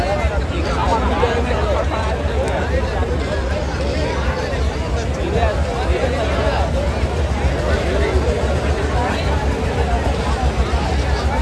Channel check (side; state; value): both; identical; correlation 1.00